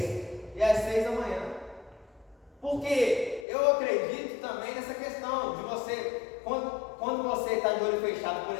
e as 6 da manhã. Porque eu acredito também nessa questão de você, quando você está de olho fechado, por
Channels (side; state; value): right; drops out; at 3.5 s